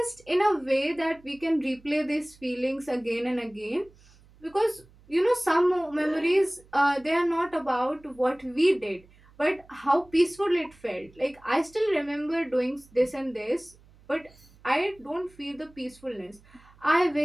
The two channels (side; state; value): right; noise; hum, 27 dB below the sound